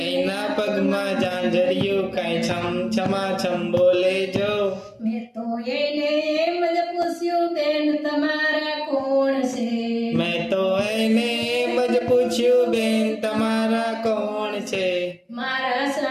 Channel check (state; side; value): identical; both; correlation 1.00